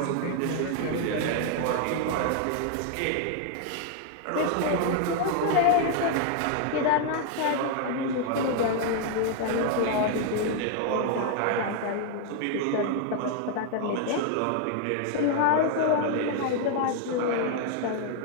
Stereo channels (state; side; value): different; both; correlation 0.00